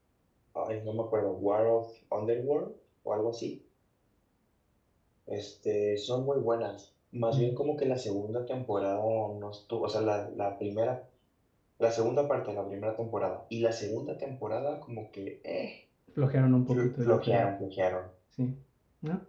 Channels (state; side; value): identical; both; correlation 1.00